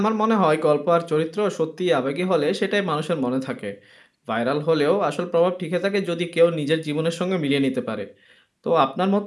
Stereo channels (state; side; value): identical; both; correlation 1.00